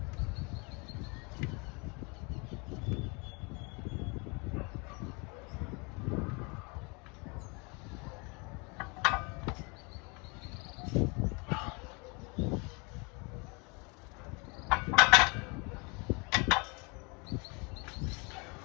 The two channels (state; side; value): quieter; right; 30.5 dB